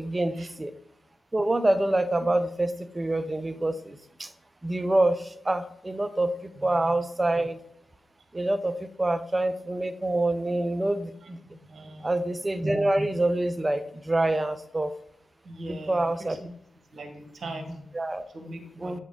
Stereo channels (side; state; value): both; normal; correlation 0.97